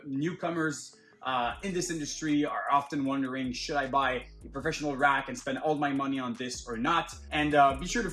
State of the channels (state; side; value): identical; both; correlation 1.00